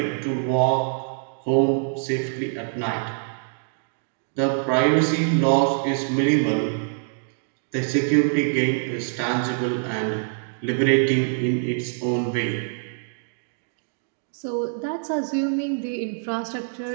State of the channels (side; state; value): left; silent; digital silence